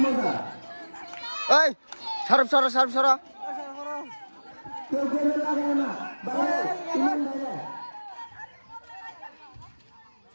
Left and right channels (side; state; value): both; inverted; correlation -1.00